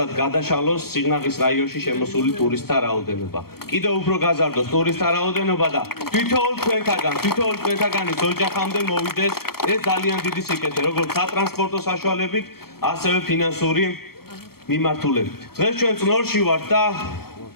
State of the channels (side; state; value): right; late; 0.94 ms